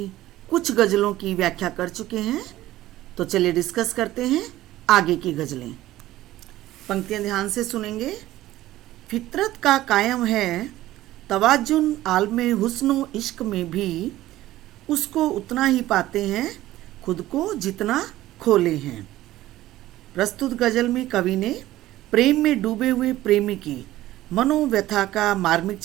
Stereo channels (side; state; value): left; quieter; 15.3 dB